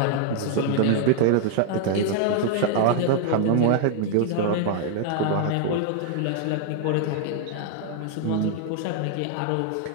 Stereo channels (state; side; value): different; both; correlation 0.00